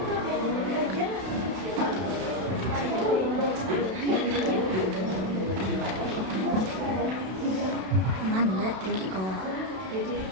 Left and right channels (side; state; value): left; late; 32 ms